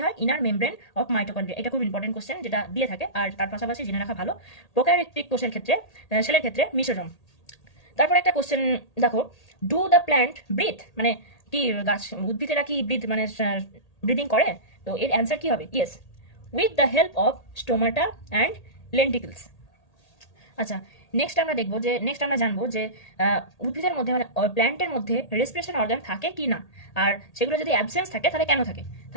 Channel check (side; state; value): right; late; 1.8 ms